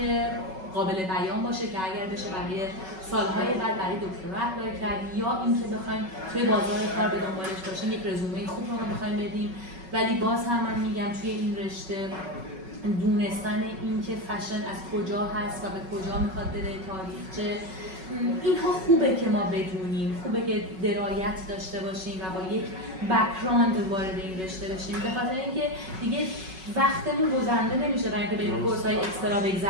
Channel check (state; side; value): late; left; 5.4 ms